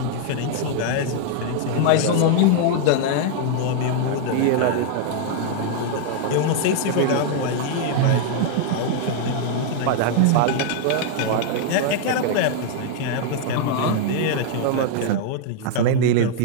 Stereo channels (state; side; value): different; both; correlation 0.00